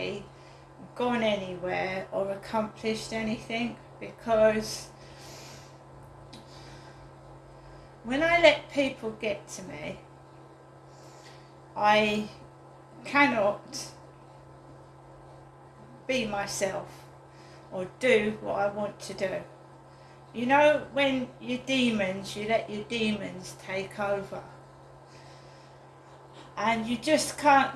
gone anywhere or accomplished anything, because when I let people get to me, I cannot be myself or do what I want to do. You know, when your demons, you let your demons take over, and you just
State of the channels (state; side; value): identical; both; correlation 1.00